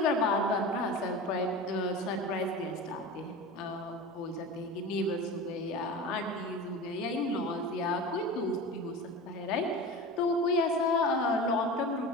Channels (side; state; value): both; normal; correlation 0.31